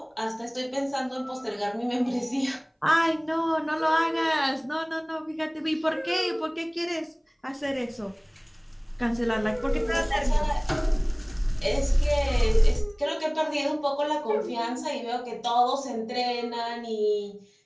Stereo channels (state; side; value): identical; both; correlation 1.00